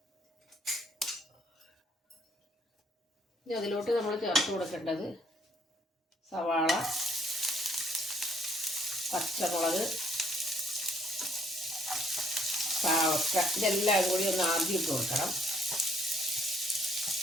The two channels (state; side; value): normal; both; correlation 0.65